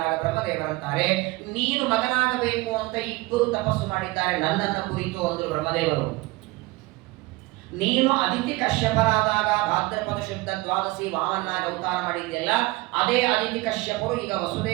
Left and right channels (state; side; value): quieter; left; 21.2 dB